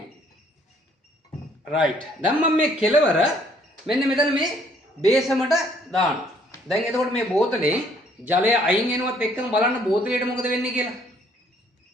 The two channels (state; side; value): normal; both; correlation 0.63